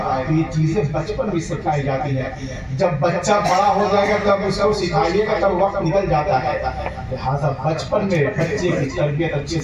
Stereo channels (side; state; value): both; identical; correlation 1.00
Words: یہ چیزیں بچپن میں سکھائی جاتی ہیں. جب بچہ بڑا ہو جائے گا تب اس کو سکھائیے گا تب وقت نکل جاتا ہے. لہٰذا بچپن میں بچے کی تربیت اچھے